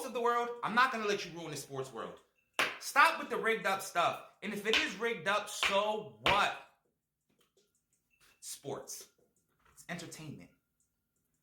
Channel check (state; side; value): identical; both; correlation 1.00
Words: of the world. I'm not going to let you ruin the sports world. Stop with the rigged up stuff. And if it is rigged up, so what? Sports. It's entertainment.